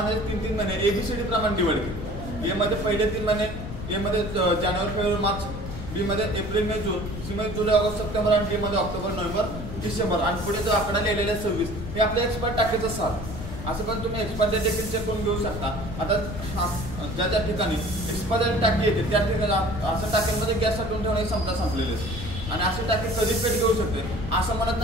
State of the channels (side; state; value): left; noise; rumble, 8 dB below the sound